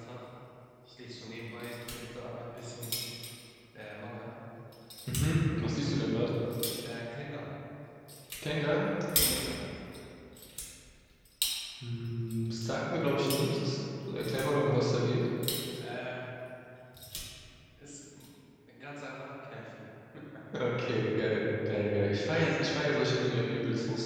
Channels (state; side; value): identical; both; correlation 1.00